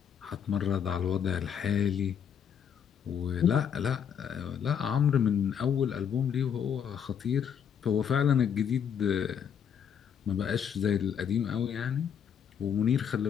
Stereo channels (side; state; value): right; quieter; 8.0 dB